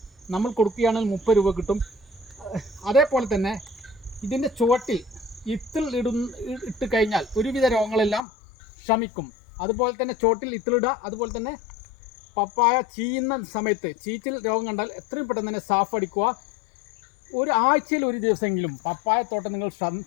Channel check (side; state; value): right; drops out; at 8.2 s